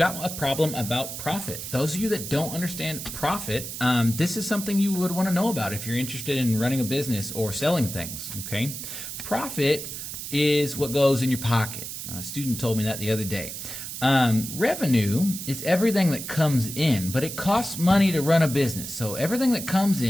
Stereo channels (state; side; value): noise; right; hiss, 8 dB below the sound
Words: a problem about profit. Those of you that don't understand profit, this is something you would want to know about if you're interested in running a business or selling things, okay? Profit is what goes in your pocket. A student told me that the other day. Revenue is everything that comes in, but it costs money to run a business. So everything that comes